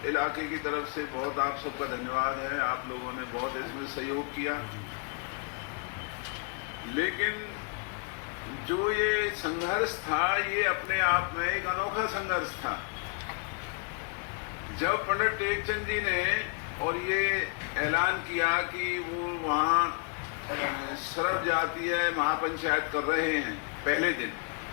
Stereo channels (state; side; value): quieter; right; 37.8 dB